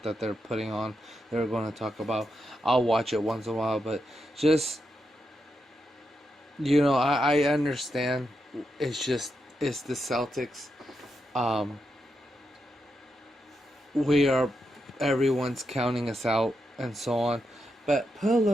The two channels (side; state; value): both; normal; correlation 0.84